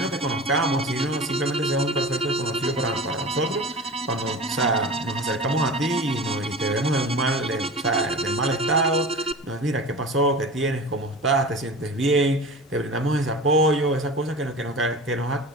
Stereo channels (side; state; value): both; normal; correlation 0.34